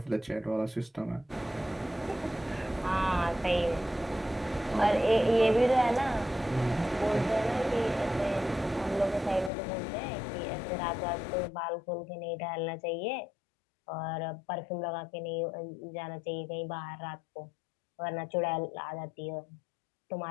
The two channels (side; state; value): right; drops out; at 9.5 s